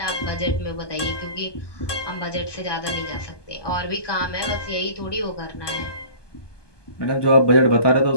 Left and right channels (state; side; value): late; right; 1.2 ms